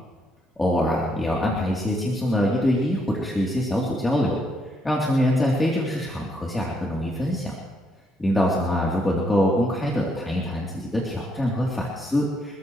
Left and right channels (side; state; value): both; normal; correlation 0.74